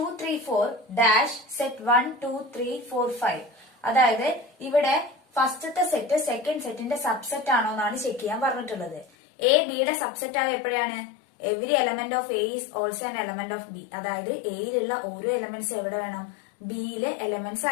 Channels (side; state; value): right; drops out; at 9.1 s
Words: 3 4 ഡാഷ് സെറ്റ് 1 2 3 4 5. അതായത് ഇവിടെ ഫസ്റ്റത്തെ സെറ്റ് സെക്കൻഡ് സെറ്റിന്റെ സബ്സെറ്റ് ആണോ എന്നാണ് ചെക്ക് ചെയ്യാൻ പറഞ്ഞിട്ടുള്ളത്. എ ബിയുടെ സബ്സെറ്റ് ആവുക എപ്പോഴാണ്? Every element of A is also an element of B. അതായത് എയിലുള്ള ഓരോ എലമെന്റ്സ് എവിടെ വേണം? ബിയിലെ എലമെന്റ്സ്